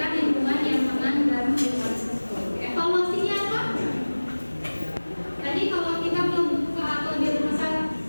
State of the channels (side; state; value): both; inverted; correlation -1.00